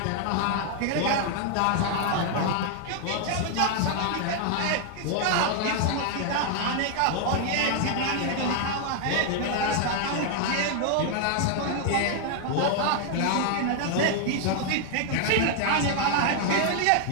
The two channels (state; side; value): different; both; correlation 0.00